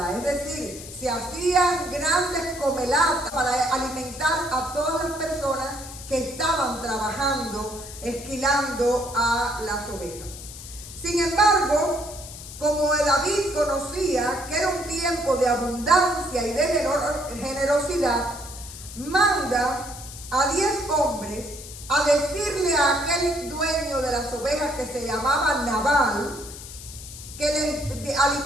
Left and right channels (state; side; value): noise; left; hiss, 13 dB below the sound